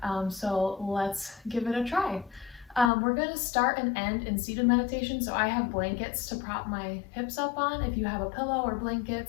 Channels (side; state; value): right; drops out; at 2.9 s